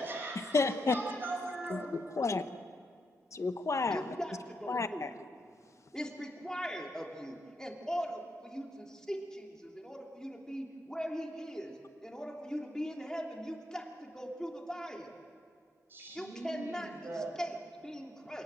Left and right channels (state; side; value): normal; both; correlation 0.80